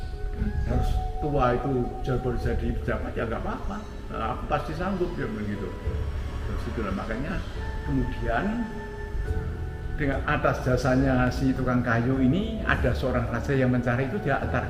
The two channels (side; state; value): both; identical; correlation 1.00